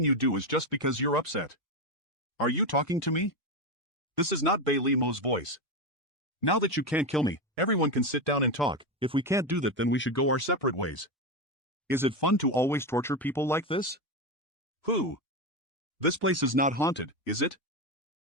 you do is just because you're upset. Are you talking to me? This is not Bailey Mo's voice. Now that you can't kill me, everyone can sit down and talk. If we can't do that, then we should go our separate ways. Is it fun to always torture people like this? Who? This place is not haunted, is it?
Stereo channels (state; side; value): normal; both; correlation 0.13